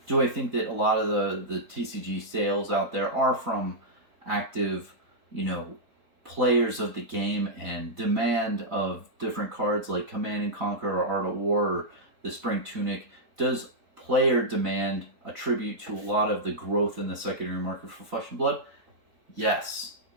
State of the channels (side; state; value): left; late; 4.0 ms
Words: Do I think that a lot of the TCG sales out there are from active, you know, players of the game and demand of different cards like Command and Conquer or Art of War or the Spring Tunic? Does player demand attribute to a lot of the growth in the secondary market for Flesh and Blood? Yes.